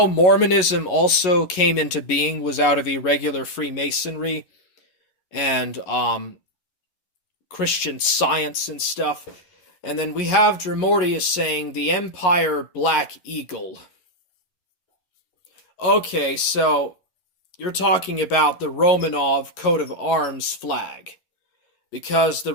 Mormonism also came into being, was out of irregular Freemasonry and Christian Science and stuff? And then we have Dremortius saying the Empire Black Eagle. Okay, so you're talking about the Romanov coat of arms flag, because the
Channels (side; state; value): right; late; 11 ms